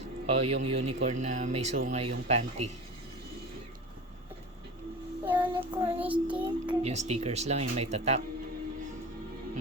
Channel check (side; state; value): both; normal; correlation 0.32